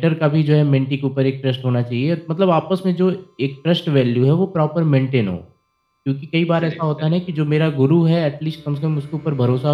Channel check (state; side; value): identical; both; correlation 1.00